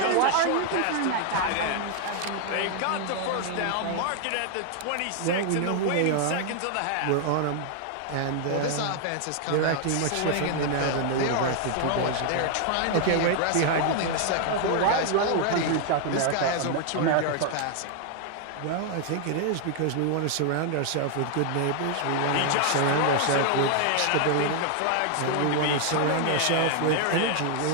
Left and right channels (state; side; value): different; both; correlation 0.00